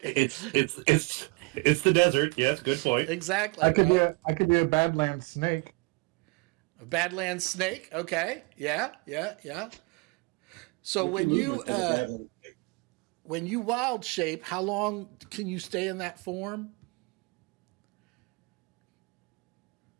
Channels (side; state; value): left; quieter; 27.4 dB